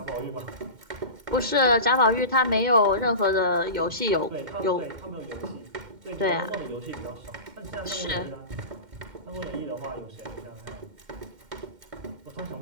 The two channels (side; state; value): left; late; 2.1 ms